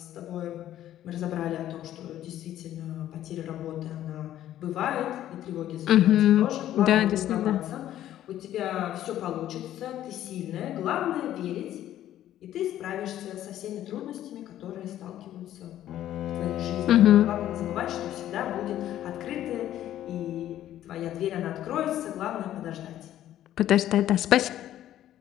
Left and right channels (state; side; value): quieter; right; 12.4 dB